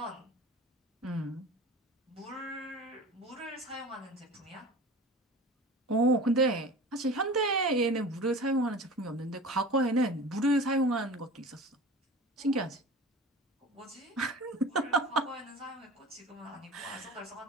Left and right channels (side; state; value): both; normal; correlation 0.37